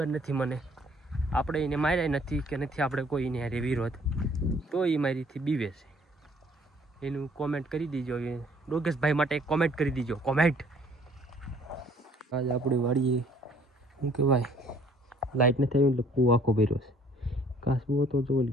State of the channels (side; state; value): both; normal; correlation 0.59